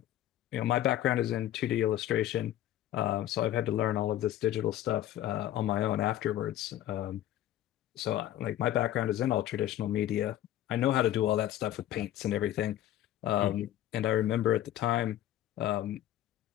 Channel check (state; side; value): quieter; right; 12.9 dB